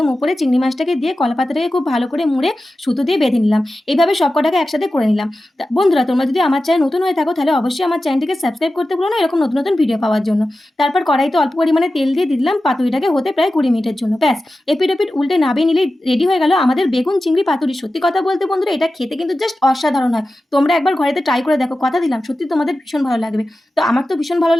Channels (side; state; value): both; normal; correlation 0.94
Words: উপরে চিংড়ি মাছটাকে দিয়ে কলা পাতাটাকে খুব ভালো করে মুড়ে সুতো দিয়ে বেঁধে নিলাম। এইভাবে সব কটাকে একসাথে করে নিলাম। বন্ধুরা, তোমরা যদি আমার চ্যানেল নতুন হয়ে থাকো তাহলে অবশ্যই আমার চ্যানেলটিকে সাবস্ক্রাইব করতে ভুলো না এরকম নতুন নতুন ভিডিও পাওয়ার জন্য। তারপর কড়াইতে অল্প পরিমাণে তেল দিয়ে দিলাম পাতুরিটাকে হতে প্রায় ২০ মিনিটের জন্য। ব্যাস, এপিট ওপিট উল্টে নাবিয়ে নিলেই রেডি হয়ে গেল আমাদের বেগুন চিংড়ি পাতুরি। সত্যি কথা বলতে বন্ধুরা, এটা খেতে কিন্তু জাস্ট অসাধারণ হয়। তোমরা একবার ঘরেতে ট্রাই করে দেখো, কথা দিলাম সত্যি তোমাদের ভীষণ ভালো লাগবে। তো আমার তো ভীষণ ভালো